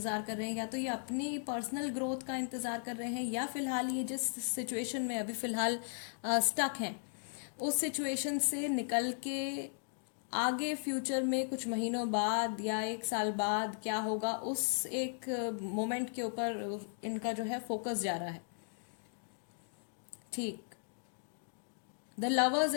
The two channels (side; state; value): right; silent; digital silence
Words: कर रहे हैं, या तो ये अपनी पर्सनल ग्रोथ का इंतज़ार कर रहे हैं, या फिलहाल ये जिस सिचुएशन में अभी फ़िलहाल स्टक हैं उस सिचुएशन से निकल के आगे फ्यूचर में कुछ महीनों बाद या 1 साल बाद क्या होगा, उस एक मोमेंट के ऊपर इनका जो है फोकस जा रहा है, ठीक। द लवर्स